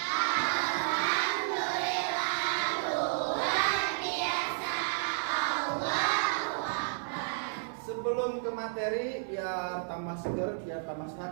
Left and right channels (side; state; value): left; silent; digital silence